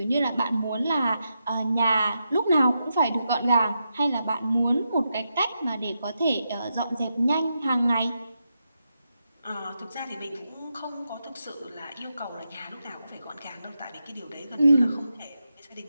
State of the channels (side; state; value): both; inverted; correlation -0.86